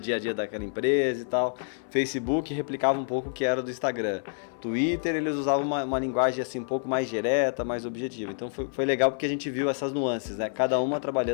a dia daquela empresa e tal. Facebook replicava um pouco o que era do Instagram. Twitter, eles usavam uma linguagem assim um pouco mais direta, mais objetiva. Então foi legal porque a gente viu essas nuances, né? Cada uma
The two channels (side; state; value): right; silent; 60 dB below the other